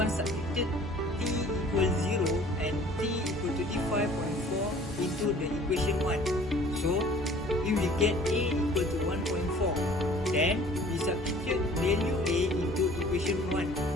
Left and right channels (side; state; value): both; normal; correlation 0.51